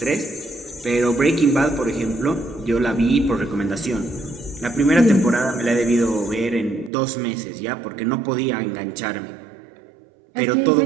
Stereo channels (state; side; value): drops out; left; at 6.9 s